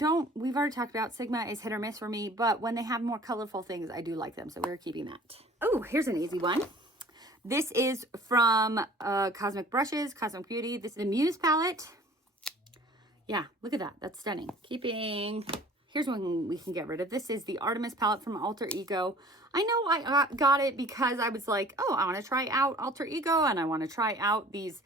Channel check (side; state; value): both; normal; correlation 0.48